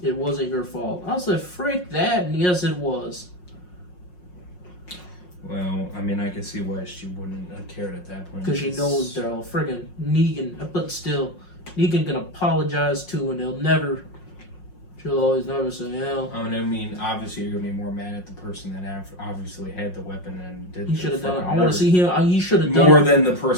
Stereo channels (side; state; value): right; late; 5.5 ms